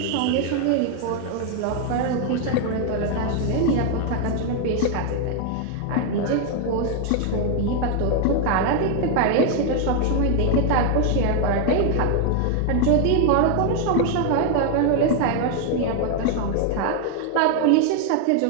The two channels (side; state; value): both; different; correlation 0.00